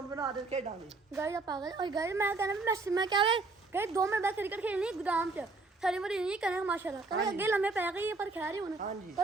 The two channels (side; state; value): left; quieter; 3.5 dB